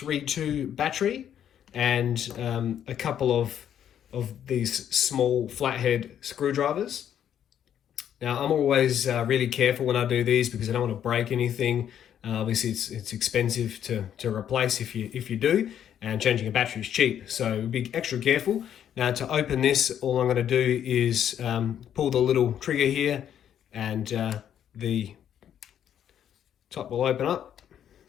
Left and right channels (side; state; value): right; quieter; 9.7 dB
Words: battery and a couple of these small flathead screwdrivers. Now I'm always really careful when I do these because I don't want to break anything. Obviously it's expensive to replace if you do, and changing a battery is cheap, so be extra careful. Now to open this, all I'm going to do is pull the little trigger here, and the top will open up